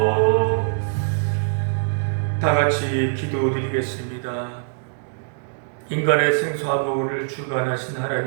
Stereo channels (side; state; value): left; silent; digital silence